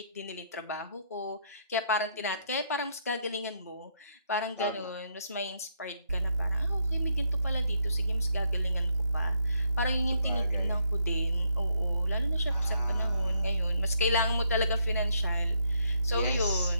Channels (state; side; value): inverted; both; correlation -0.74